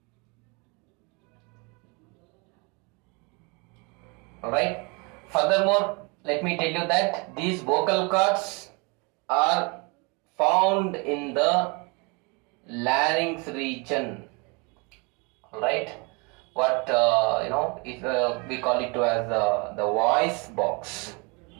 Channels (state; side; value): quieter; left; 30.2 dB